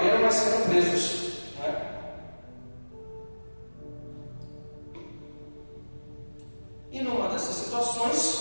mas sendo presos, né? E numa dessas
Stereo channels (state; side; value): inverted; both; correlation -1.00